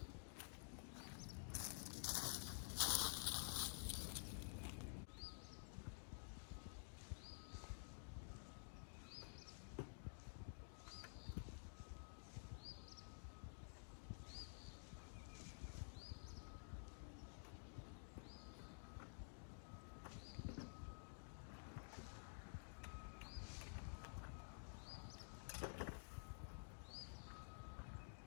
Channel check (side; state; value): right; silent; digital silence